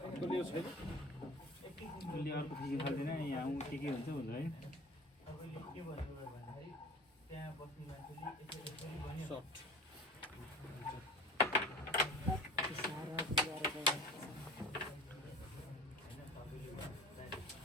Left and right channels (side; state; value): both; normal; correlation 0.41